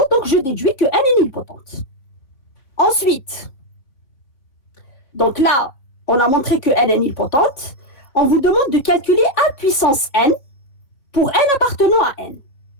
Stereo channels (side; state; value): right; late; 3.6 ms